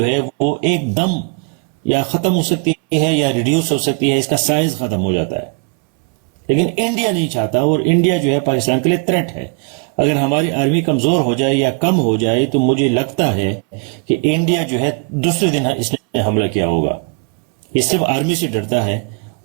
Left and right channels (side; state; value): left; quieter; 35.0 dB